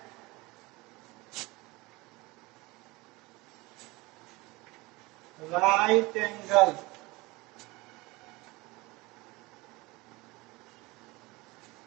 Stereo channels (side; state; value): left; quieter; 22.6 dB